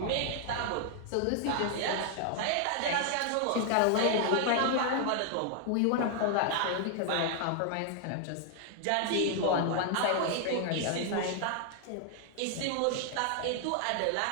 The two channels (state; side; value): different; both; correlation 0.00